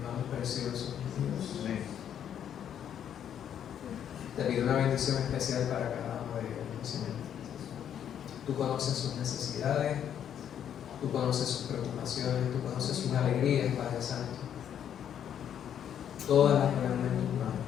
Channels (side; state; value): right; quieter; 9.3 dB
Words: preciosos, Dios. Amén. Te pido una bendición especial para cada uno de ellos, Señor. Tú conoces sus necesidades, tú conoces sus preocupaciones, tú conoces sus alegrías, Padre Santo. Todas las ponemos en tus